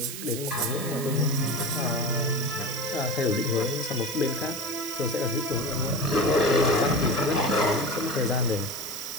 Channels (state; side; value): noise; right; hiss, 8 dB below the sound